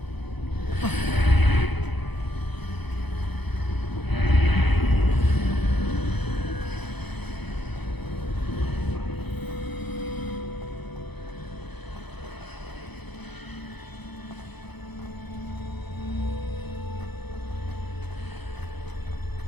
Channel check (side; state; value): right; late; 0.99 ms